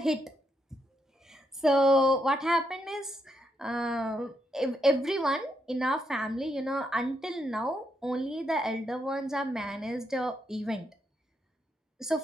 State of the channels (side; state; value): both; normal; correlation 0.79